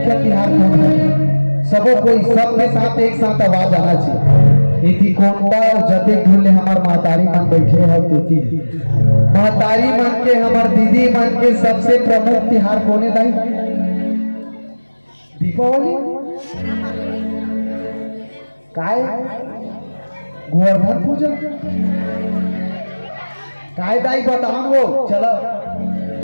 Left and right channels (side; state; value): both; inverted; correlation -1.00